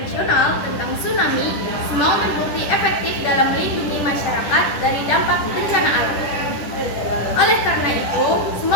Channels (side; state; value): right; late; 10 ms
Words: tentang tsunami, smog terbukti efektif dalam melindungi masyarakat dari dampak bencana alam. Oleh karena itu,